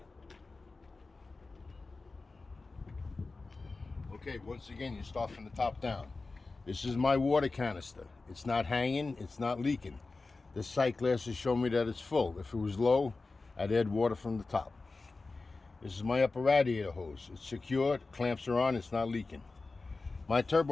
Okay, once again, you start from the top down. This is my water canister. It's not hanging, it's not leaking. This sight glasses show me that it's full. If it was low, I'd add water from the top. This is my upper radiator hose. It's secure, clamps are on, it's not leaking. My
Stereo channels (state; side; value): quieter; right; 3.7 dB